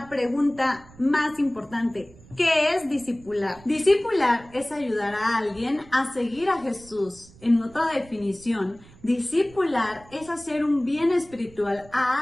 pregunta más importante. ¿Qué es discipular? Discipular es ayudar a alguien a seguir a Jesús. En otra definición, discipular es hacer un bien espiritual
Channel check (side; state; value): right; noise; rumble, 23 dB below the sound